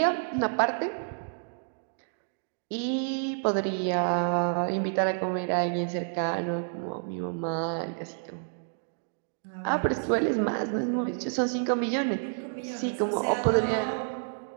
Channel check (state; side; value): silent; left; digital silence